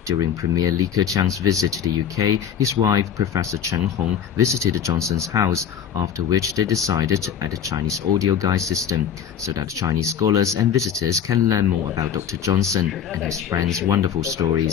during Premier Li Keqiang's visit to the UK, his wife, Professor Chen Hong, visited the Johnson's house, after which they decided to add a Chinese audio guide system so that Chinese scholars and visitors can learn more about Dr. Johnson and his friends' wonderful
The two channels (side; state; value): right; quieter; 8.5 dB